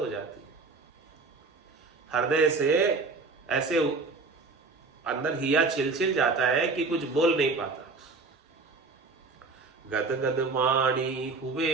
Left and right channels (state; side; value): quieter; left; 4.0 dB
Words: जाती है। हृदय से ऐसे अंदर हिया छिल जाता है कि कुछ बोल नहीं पाता। गद गद वाणी